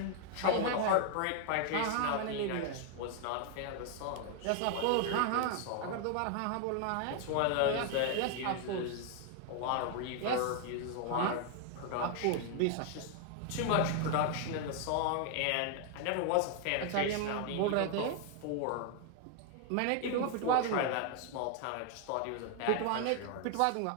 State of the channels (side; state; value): both; different; correlation 0.00